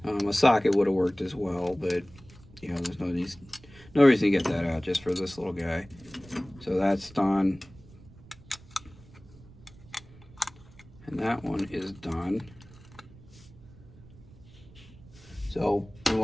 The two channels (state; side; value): noise; right; rumble, 22 dB below the sound